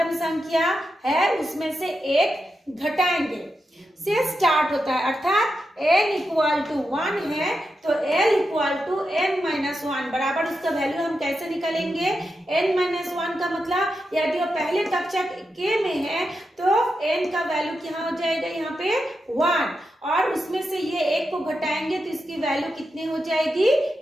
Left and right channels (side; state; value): both; normal; correlation 0.87